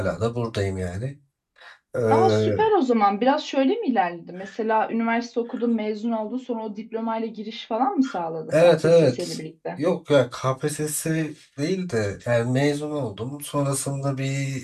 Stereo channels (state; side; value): identical; both; correlation 1.00